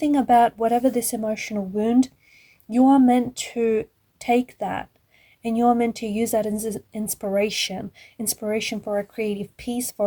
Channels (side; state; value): both; identical; correlation 1.00